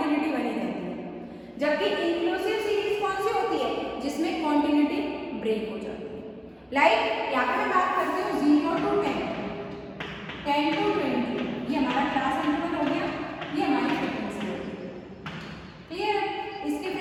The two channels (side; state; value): both; identical; correlation 1.00